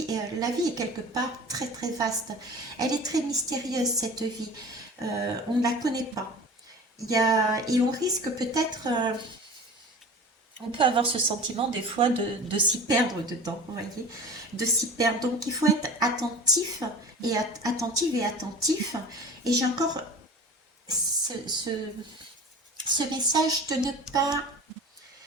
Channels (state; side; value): normal; both; correlation 0.38